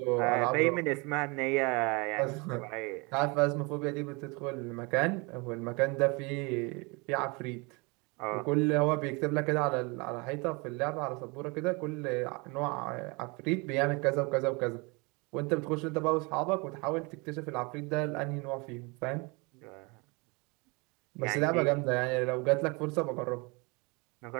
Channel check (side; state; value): left; quieter; 28.6 dB